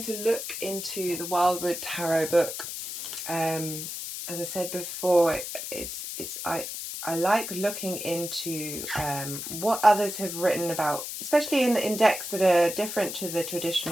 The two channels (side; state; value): left; noise; hiss, 7 dB below the sound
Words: to look into the Wildwood Tarot book. As I said before, I like looking into what others have written about, especially in decks that are different to the